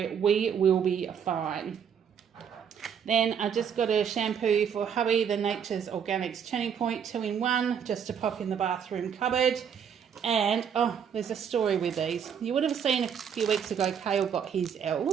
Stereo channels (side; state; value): left; quieter; 7.7 dB